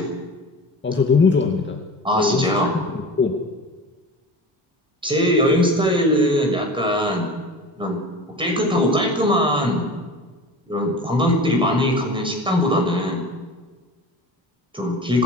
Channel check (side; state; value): both; normal; correlation 0.35